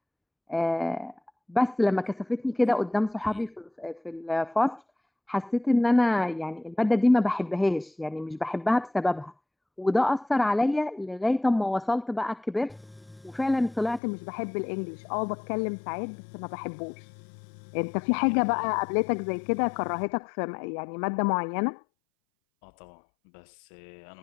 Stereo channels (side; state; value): right; drops out; at 14.0 s